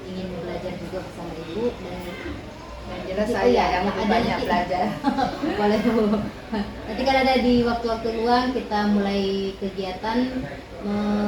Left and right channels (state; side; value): identical; both; correlation 1.00